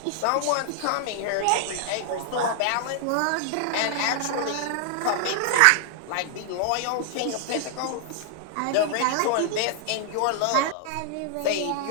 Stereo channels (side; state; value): both; different; correlation -0.01